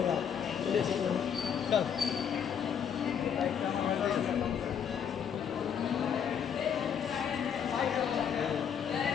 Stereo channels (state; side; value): quieter; right; 7.9 dB